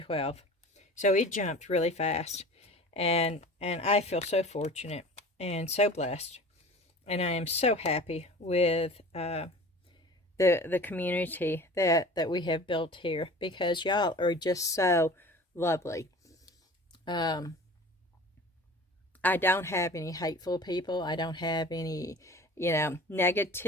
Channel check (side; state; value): both; normal; correlation 0.41